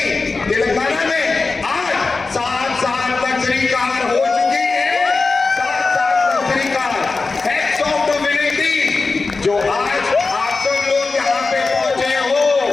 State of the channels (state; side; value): quieter; right; 4.0 dB